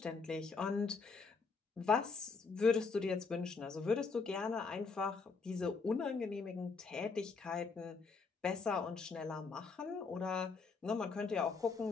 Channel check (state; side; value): quieter; right; 4.7 dB